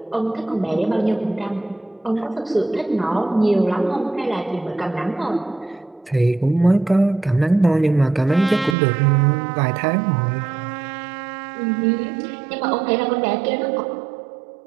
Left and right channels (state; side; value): drops out; left; at 8.8 s